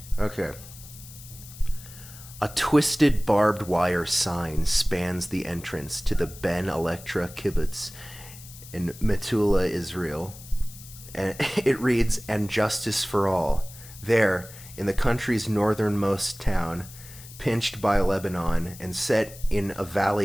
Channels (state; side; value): noise; left; hiss, 17 dB below the sound